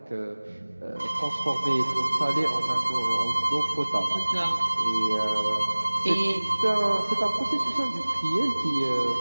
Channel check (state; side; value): inverted; both; correlation -1.00